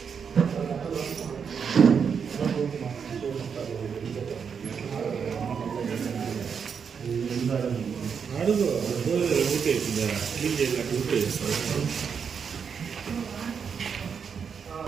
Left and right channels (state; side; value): quieter; left; 6.6 dB